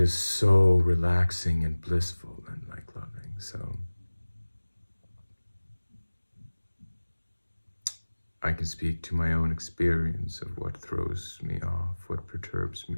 so relaxing and blissful and like loving. So I can speak to my own experience of what throws me off, what perturbs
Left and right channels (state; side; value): inverted; both; correlation -1.00